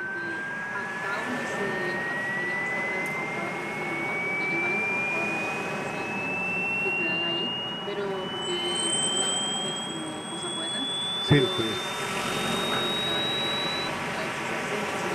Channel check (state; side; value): identical; both; correlation 1.00